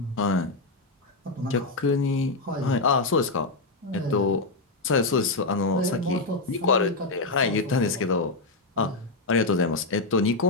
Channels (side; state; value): right; quieter; 3.3 dB